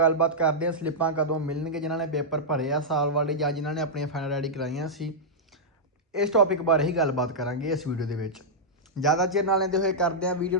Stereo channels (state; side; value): normal; both; correlation -0.08